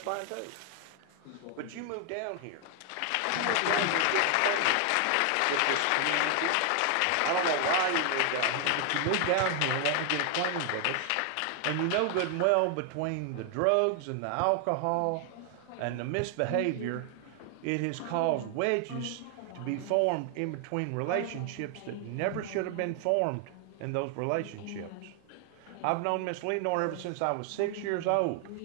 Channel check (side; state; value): both; different; correlation 0.00